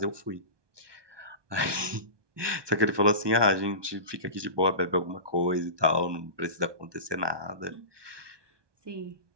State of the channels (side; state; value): left; late; 1.2 ms